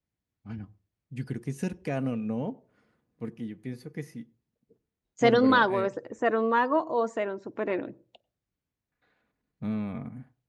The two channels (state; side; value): identical; both; correlation 1.00